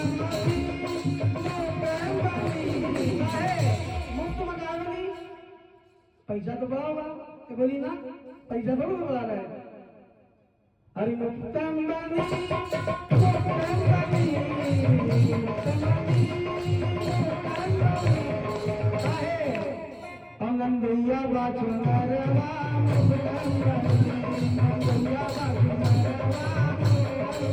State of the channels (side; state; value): both; identical; correlation 1.00